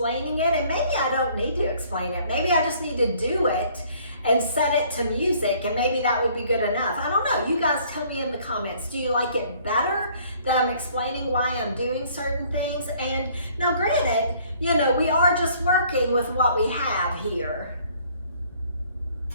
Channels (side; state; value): both; inverted; correlation -0.59